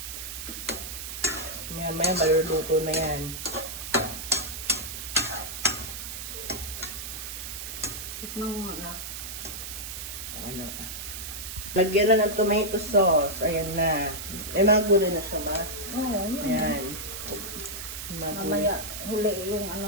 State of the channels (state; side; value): noise; right; hiss, 7 dB below the sound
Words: Yan, may maluluto na yan. Tikman mo na. Ano? Lagyan na ng tomato sauce. Ayan na. May mga gulay na siya ba? Oo, yun. Ayan. Mamaya huli yung